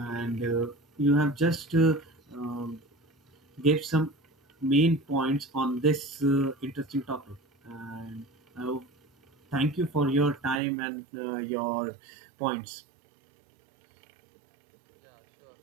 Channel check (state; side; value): drops out; left; at 10.6 s